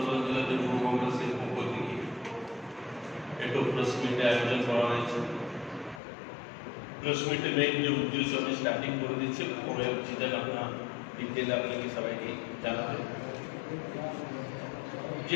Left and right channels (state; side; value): drops out; right; at 6.0 s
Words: जिले যুব কংগ্রেসের পক্ষ থেকে একটা প্রেস মিট আয়োজন করা হয়েছে। প্রেস মিটে মেইন যে উদ্দেশ্য আমি স্টার্টিং করে দিচ্ছি, পরে চিন্তা ভাবনা ডিটেইল আপনাকে সবাইকে জানাতে। যে